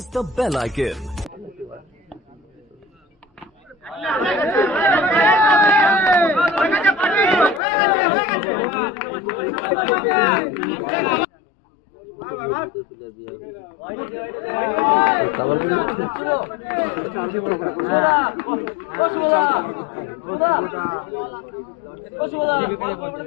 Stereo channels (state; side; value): drops out; right; at 7.6 s